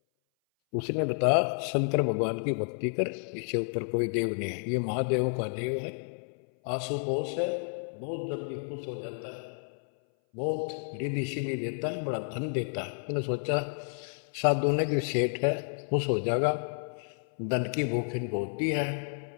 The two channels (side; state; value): right; silent; 57 dB below the other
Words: उसने बताया, शंकर भगवान की भक्ति कर, इससे ऊपर कोई देव नहीं है, ये महादेवों का देव है, आशुतोष है, बहुत जल्दी खुश हो जाता है, बहुत रिद्धि सिद्धि देता है, बड़ा धन देता है। मैंने सोचा साधु ने कि सेठ है, खुश हो जाएगा, धन की भूख इनको होती है